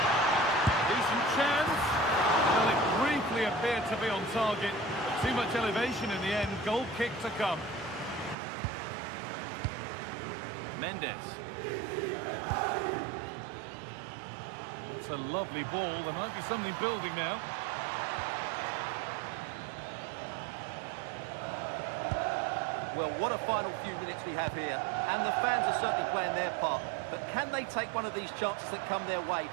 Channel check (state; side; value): drops out; left; at 8.3 s